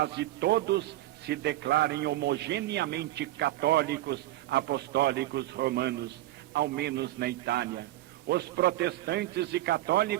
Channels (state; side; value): quieter; left; 15.5 dB